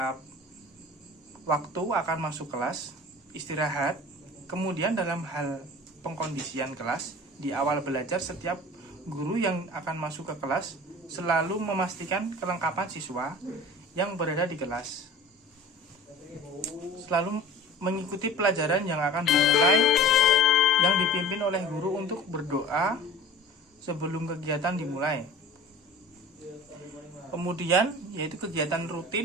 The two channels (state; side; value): normal; both; correlation 0.41